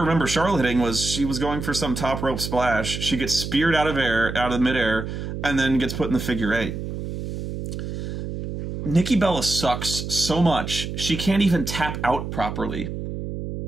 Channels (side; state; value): right; noise; hum, 6 dB below the sound